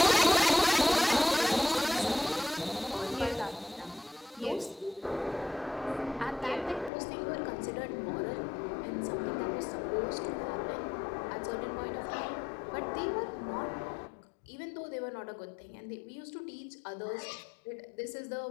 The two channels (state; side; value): drops out; right; at 6.9 s